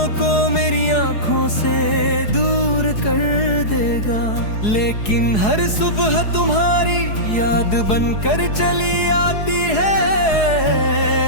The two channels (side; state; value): right; late; 4.7 ms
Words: को मेरी आंखों से दूर कर देगा, लेकिन हर सुबह तुम्हारी याद बनकर चली आती है।